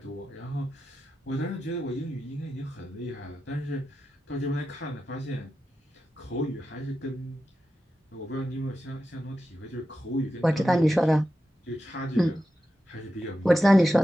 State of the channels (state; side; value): normal; both; correlation 0.90